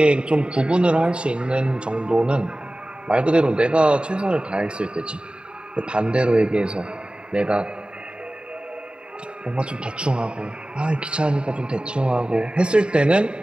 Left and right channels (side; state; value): left; late; 0.051 ms